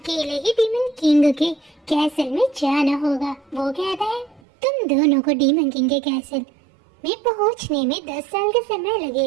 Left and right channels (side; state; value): left; drops out; at 4.4 s